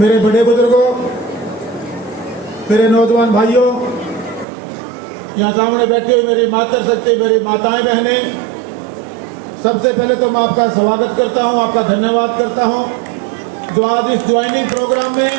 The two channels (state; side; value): drops out; left; at 4.5 s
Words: बड़े बुजुर्गों, मेरे नौजवान भाइयों, यहाँ सामने बैठी हुई मेरी मातृशक्ति, मेरी माताएं बहनें, सबसे पहले तो मैं आपका स्वागत करता हूँ, आपका धन्यवाद करता हूँ जो आज इस ज्वाइनिंग प्रोग्राम में